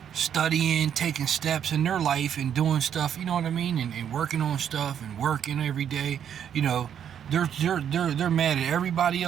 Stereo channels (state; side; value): quieter; left; 8.9 dB